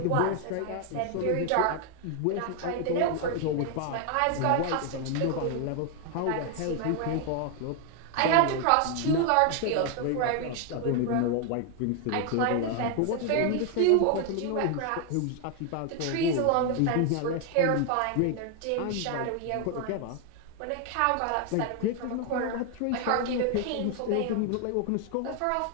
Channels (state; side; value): different; both; correlation 0.01